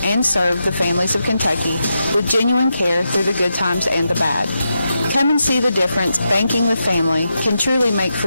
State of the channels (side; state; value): both; inverted; correlation -0.86